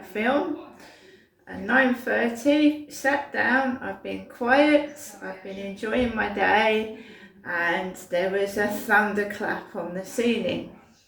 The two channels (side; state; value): both; identical; correlation 1.00